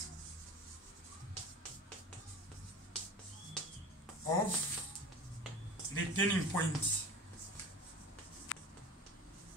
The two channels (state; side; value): normal; both; correlation 0.36